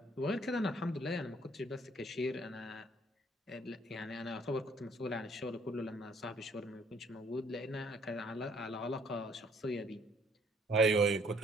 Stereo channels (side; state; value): both; normal; correlation 0.62